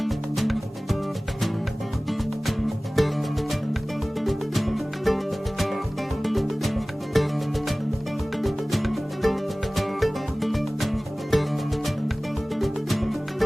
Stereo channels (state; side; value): normal; both; correlation 0.98